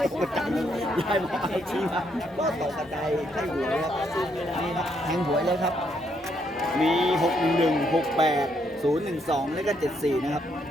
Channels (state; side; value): normal; both; correlation 0.74